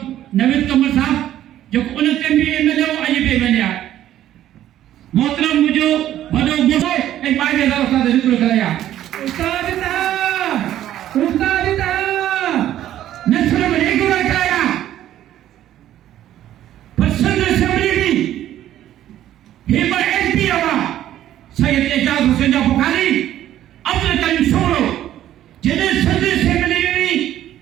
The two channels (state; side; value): quieter; left; 12.3 dB